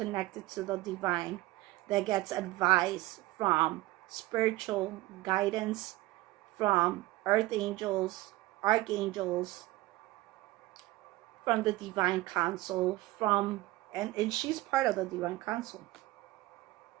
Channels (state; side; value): quieter; left; 18.4 dB